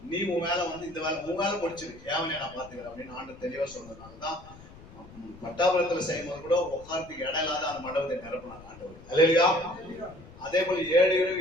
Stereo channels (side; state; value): left; noise; rumble, 19 dB below the sound